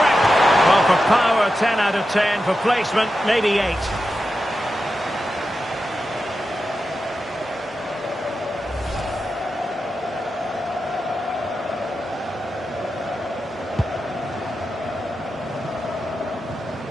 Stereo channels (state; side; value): normal; both; correlation 0.90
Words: Well, for power, 10 out of 10. For placement, maybe 8.